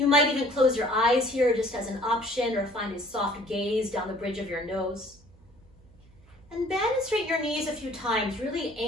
might even close your eyes here just as an option, or find a soft gaze down the bridge of your nose. And bend and straighten your knees a few times, really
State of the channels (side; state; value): right; noise; hum, 27 dB below the sound